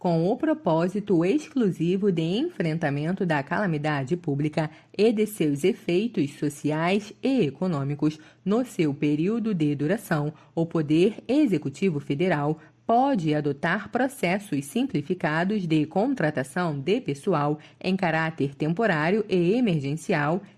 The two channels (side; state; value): both; identical; correlation 1.00